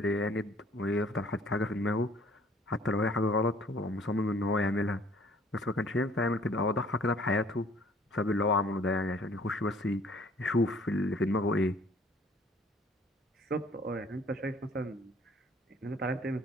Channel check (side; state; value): both; normal; correlation 0.56